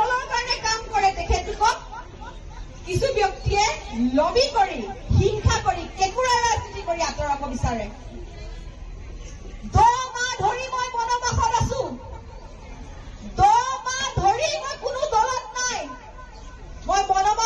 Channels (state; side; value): identical; both; correlation 1.00